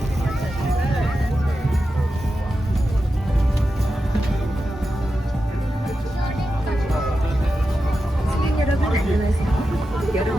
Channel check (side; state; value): both; normal; correlation 0.90